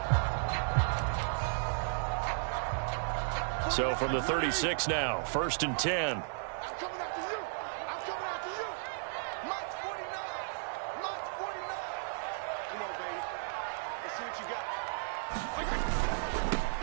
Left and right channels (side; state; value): left; silent; digital silence